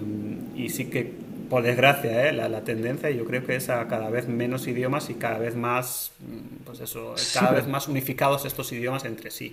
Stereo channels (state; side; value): identical; both; correlation 1.00